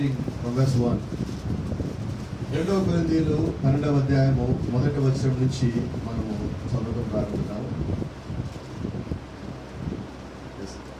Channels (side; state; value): both; identical; correlation 1.00